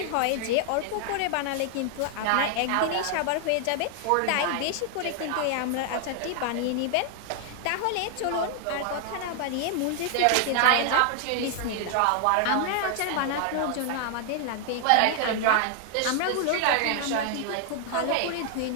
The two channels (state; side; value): different; both; correlation 0.00